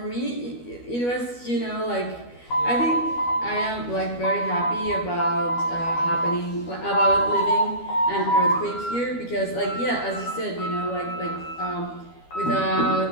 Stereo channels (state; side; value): late; right; 12 ms